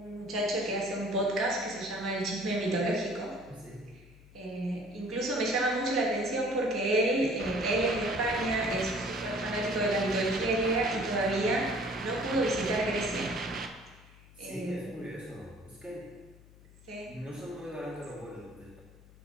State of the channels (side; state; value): left; noise; hum, 23 dB below the sound